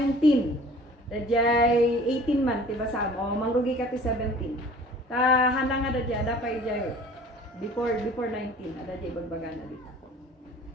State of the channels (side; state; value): both; normal; correlation 0.47